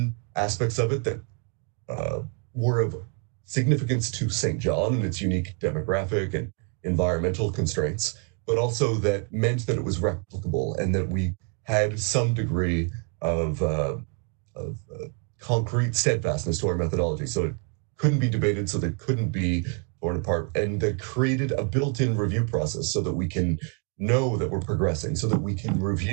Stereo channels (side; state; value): left; quieter; 37.8 dB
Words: aspects of it that were of significance to St. John and its unique demographic and environmental constraints, but also that meant that it was replicable and that we had some degree of concrete steadfastness to our methodology. So it couldn't be debated, so that couldn't be torn apart, and that created a built-in review process so that we can know that we're progressing, so that we can